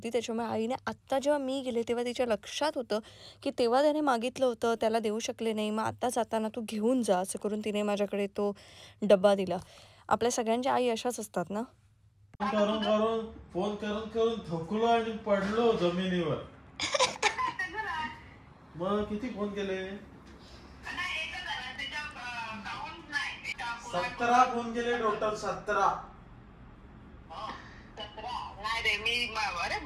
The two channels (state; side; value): identical; both; correlation 1.00